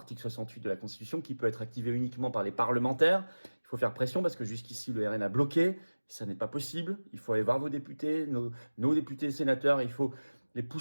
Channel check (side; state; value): both; inverted; correlation -1.00